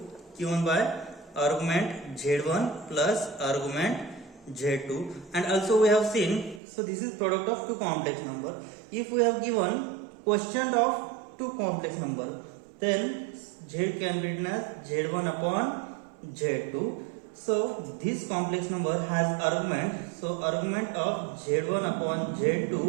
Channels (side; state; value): left; drops out; at 6.6 s